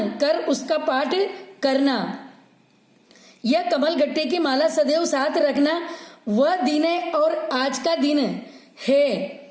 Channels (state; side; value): identical; both; correlation 1.00